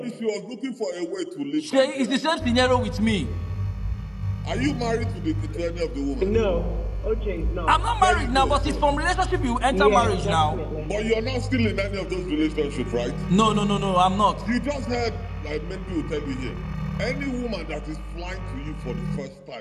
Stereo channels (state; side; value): identical; both; correlation 1.00